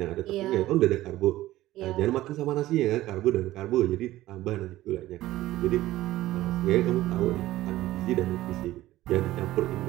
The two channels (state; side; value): quieter; left; 15.8 dB